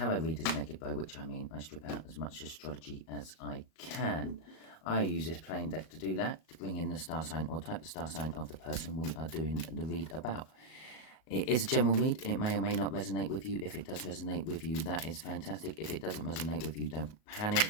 read is naked, by which I mean I strip out as much astrology as I can. I use this plain deck to do that, to bring in the star sign or type of star sign of the person we are doing the read about. It is a general read. It may or may not resonate with you. If it does resonate with you, that is fantastic. If it doesn't resonate with you, don't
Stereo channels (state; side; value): late; right; 38 ms